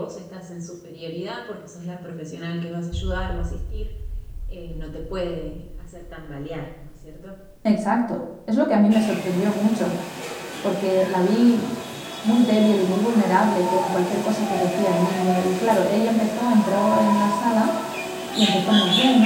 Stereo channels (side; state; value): both; identical; correlation 1.00